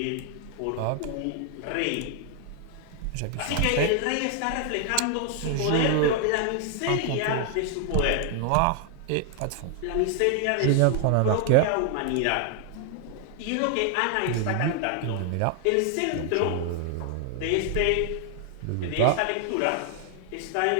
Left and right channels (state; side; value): different; both; correlation 0.00